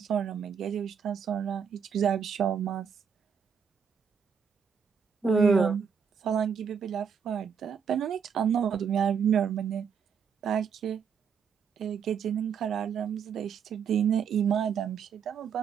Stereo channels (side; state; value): left; quieter; 6.9 dB